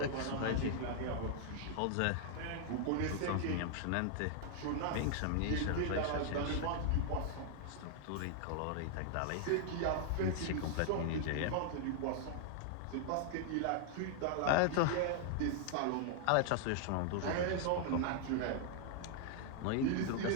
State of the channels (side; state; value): both; different; correlation -0.01